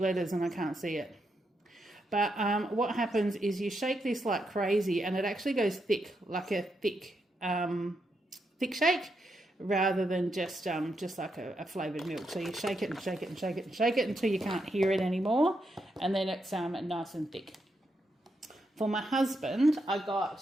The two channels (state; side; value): normal; both; correlation 0.82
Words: and I can't see it. But what happens is you shake this like crazy and it actually goes thick, like a thick shake, rather than just like a flavoured milk. So you shake it and shake it and shake it and shake it until you can't hear it anymore, and then it's nice and thick. For my husband, I